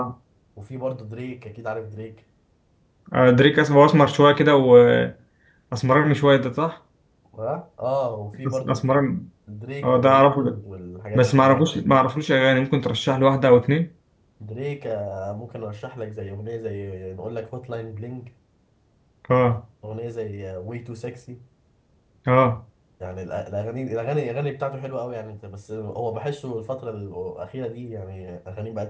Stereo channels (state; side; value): identical; both; correlation 1.00